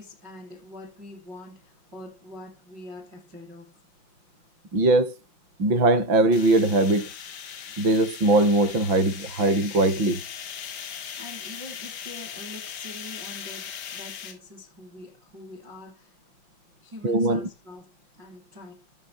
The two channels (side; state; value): left; late; 5.7 ms